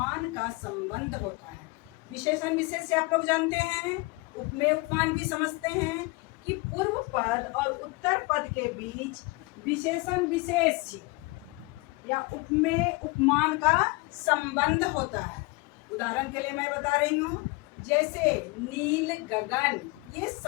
का संबंध होता है। विशेषण विशेष्य आप लोग जानते हैं, उपमेय उपमान भी समझते हैं कि पूर्व पद और उत्तर पद के बीच विशेषण विशेष्य या उपमेय उपमान का संबंध होता है। उदाहरण के लिए मैं बता रही हूँ, जैसे नील गगन, ये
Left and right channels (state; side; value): quieter; right; 25.1 dB